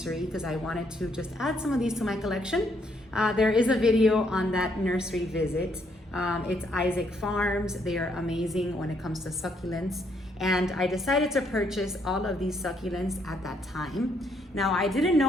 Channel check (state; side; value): normal; both; correlation 0.72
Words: because I wanted to just add some of these to my collection. There is a video on that nursery visit. It's Isaac Farms. They are amazing when it comes to succulents. And I decided to purchase all of these succulents at that time. Now, I didn't